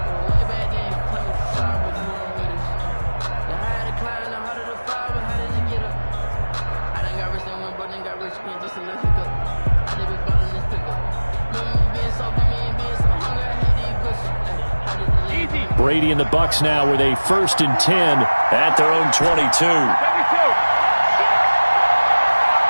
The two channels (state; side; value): inverted; both; correlation -1.00